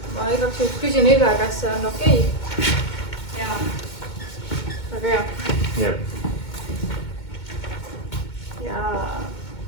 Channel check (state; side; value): late; right; 2.2 ms